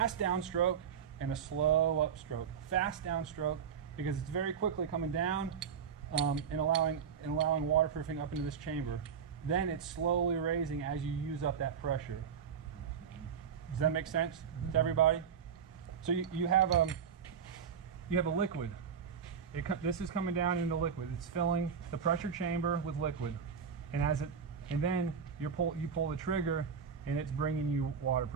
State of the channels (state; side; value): quieter; left; 7.1 dB